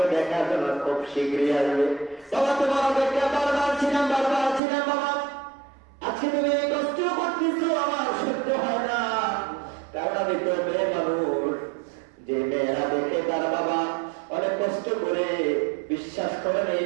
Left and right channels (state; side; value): drops out; left; at 4.6 s